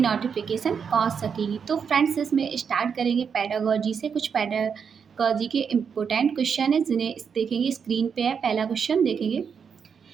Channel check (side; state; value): left; quieter; 6.6 dB